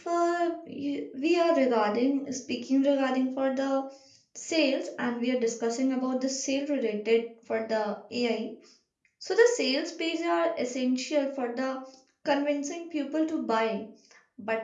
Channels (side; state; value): both; identical; correlation 1.00